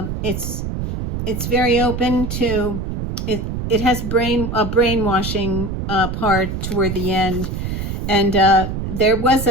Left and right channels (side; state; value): right; noise; rumble, 4 dB below the sound